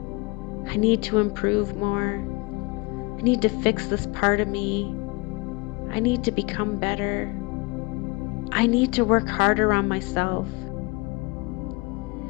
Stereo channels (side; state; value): right; quieter; 26.3 dB